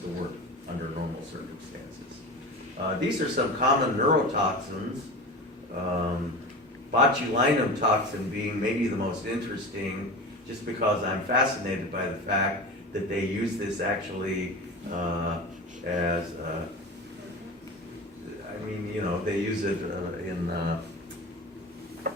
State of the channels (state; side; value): normal; both; correlation 0.30